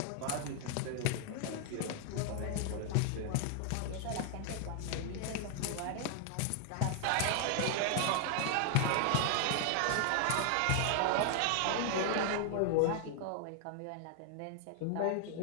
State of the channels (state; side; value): different; both; correlation 0.00